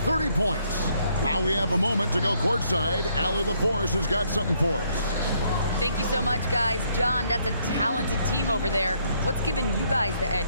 points. Now we have a moment to go courtside. Allie LaForce has got something for us. Thank you so much, guys. John, that's a talented team over there. What's given you guys the edge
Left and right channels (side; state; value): both; inverted; correlation -0.70